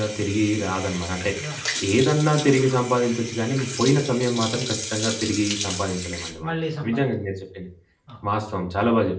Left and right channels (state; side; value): identical; both; correlation 1.00